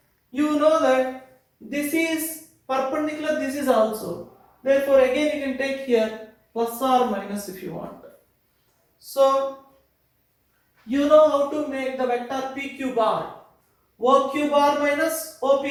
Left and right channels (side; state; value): both; identical; correlation 1.00